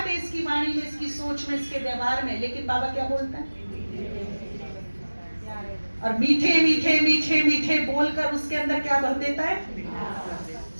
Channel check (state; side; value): inverted; both; correlation -1.00